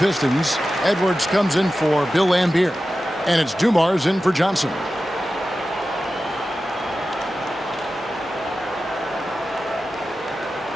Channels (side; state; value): both; normal; correlation 0.93